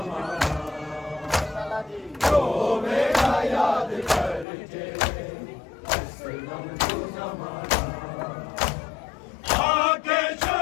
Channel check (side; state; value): right; drops out; at 4.5 s